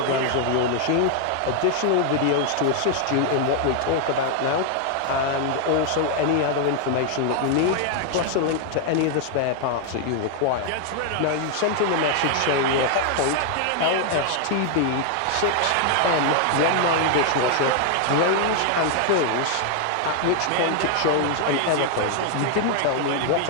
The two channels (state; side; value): different; both; correlation 0.00